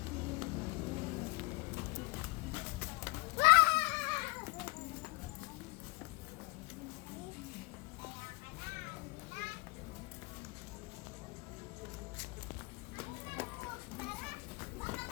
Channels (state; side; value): quieter; right; 26.0 dB